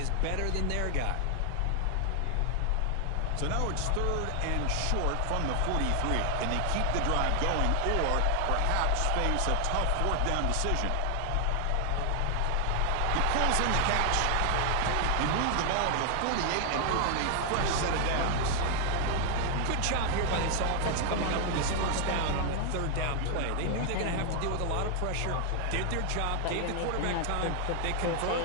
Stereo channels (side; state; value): both; different; correlation 0.00